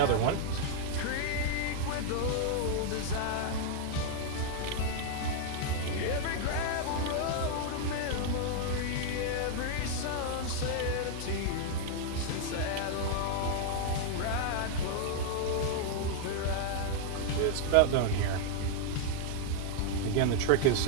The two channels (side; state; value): both; different; correlation 0.00